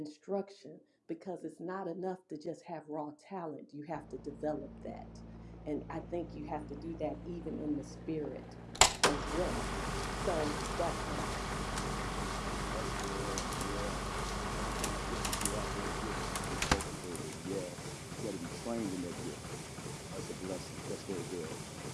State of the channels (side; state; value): both; identical; correlation 1.00